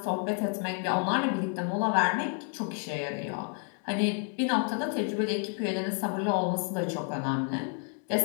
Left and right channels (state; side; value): quieter; right; 39.4 dB